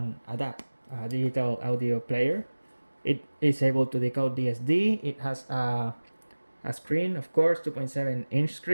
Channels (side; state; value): both; inverted; correlation -1.00